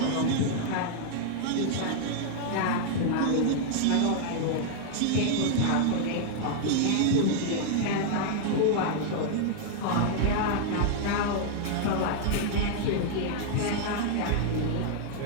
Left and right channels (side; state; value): both; different; correlation -0.01